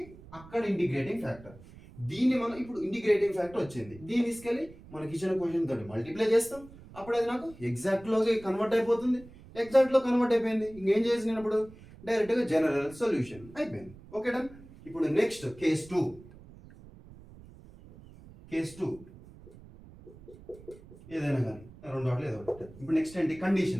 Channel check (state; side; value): noise; right; rumble, 20 dB below the sound